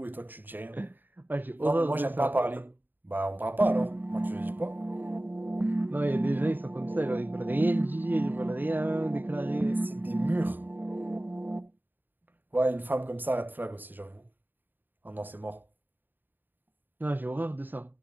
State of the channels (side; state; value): left; late; 0.091 ms